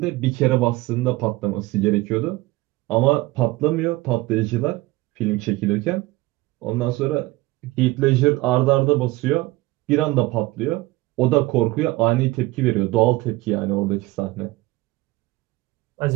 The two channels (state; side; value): quieter; left; 19.9 dB